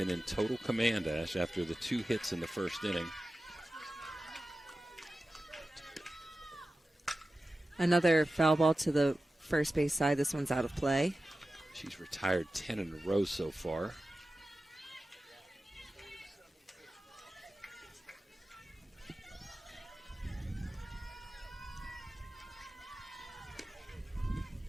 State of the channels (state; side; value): normal; both; correlation 0.94